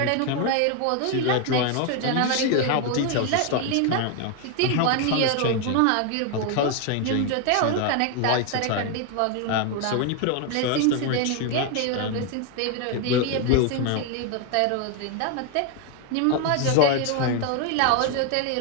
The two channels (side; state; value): both; different; correlation 0.01